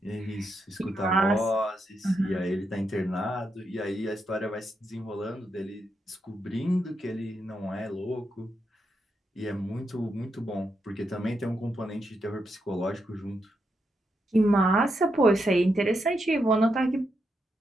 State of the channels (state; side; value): normal; both; correlation 0.83